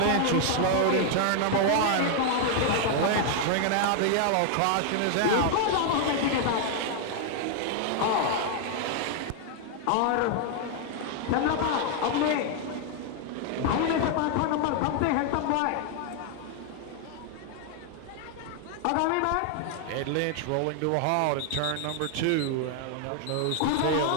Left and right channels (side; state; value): both; different; correlation 0.00